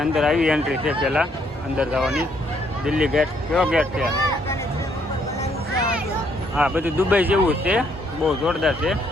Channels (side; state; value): both; normal; correlation 0.70